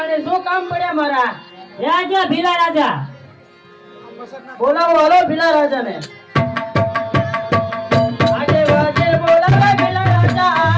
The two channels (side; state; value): both; identical; correlation 1.00